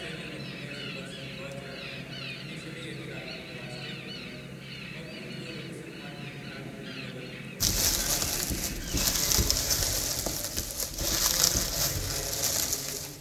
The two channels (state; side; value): identical; both; correlation 1.00